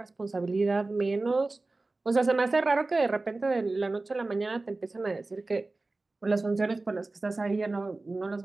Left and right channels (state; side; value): quieter; left; 3.3 dB